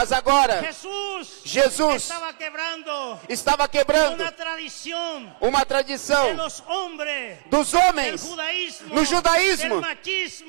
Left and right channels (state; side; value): silent; left; digital silence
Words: agora, Jesús Jesus estaba quebrando estava quebrando una tradición uma de tradição los hombres dos del homens judaísmo, no judaísmo,